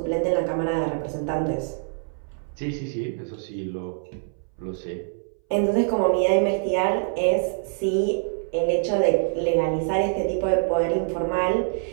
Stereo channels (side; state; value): left; silent; 62 dB below the other